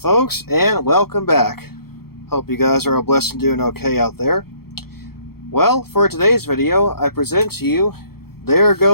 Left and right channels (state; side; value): late; right; 0.95 ms